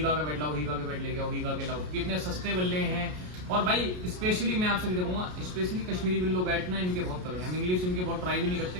का बेड लाओ, हीगा के बेड लेके आओ, हीगा के लाओ, कितने सस्ते बल्ले हैं। और भाई स्पेशली मैं आपसे भी देखूंगा, स्पेशली कश्मीरी विल्लो बैट ना इनके बहुत तगड़े हैं। हम इंग्लिश इनके बहुत ट्राई भी नहीं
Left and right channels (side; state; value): left; late; 33 ms